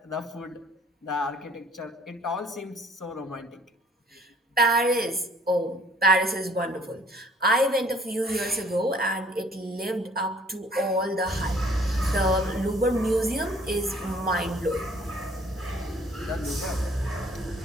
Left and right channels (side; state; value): both; normal; correlation 0.57